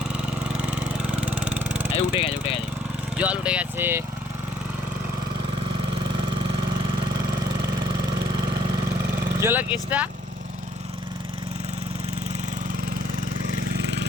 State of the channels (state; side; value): normal; both; correlation 0.63